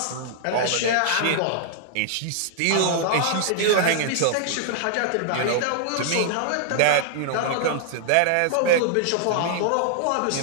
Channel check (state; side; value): different; both; correlation -0.01